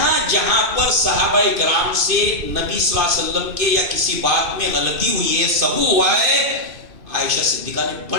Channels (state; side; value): late; left; 2.6 ms